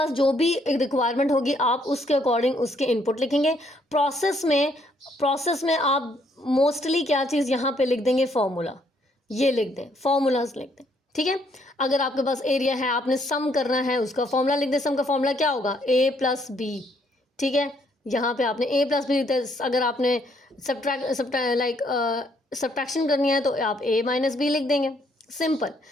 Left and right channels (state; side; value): normal; both; correlation 0.69